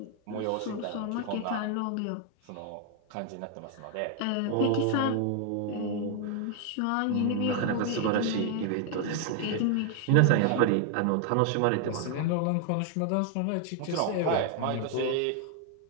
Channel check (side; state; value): both; different; correlation 0.00